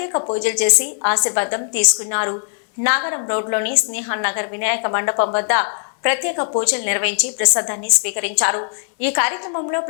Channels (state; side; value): silent; right; digital silence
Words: పూజలు చేసి ఆశీర్వాదం తీసుకున్నారు. నాగరం రోడ్లోని స్నేహన్ నగర్ వినాయక మండపం వద్ద ప్రత్యేక పూజలు నిర్వహించి ప్రసాదాన్ని స్వీకరించారు. ఈ కార్యక్రమంలో